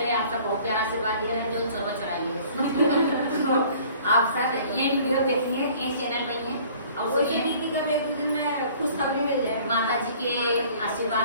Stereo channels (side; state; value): both; inverted; correlation -0.52